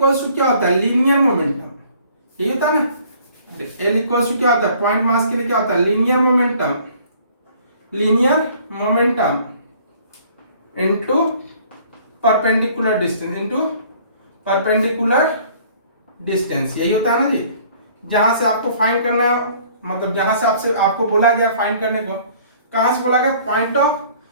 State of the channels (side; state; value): both; inverted; correlation -0.55